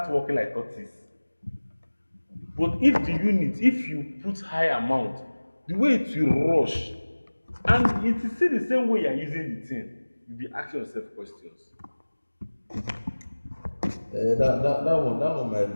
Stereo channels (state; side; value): inverted; both; correlation -1.00